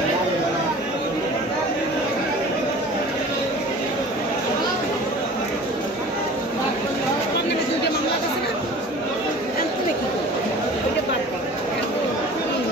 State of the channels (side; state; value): both; normal; correlation 0.42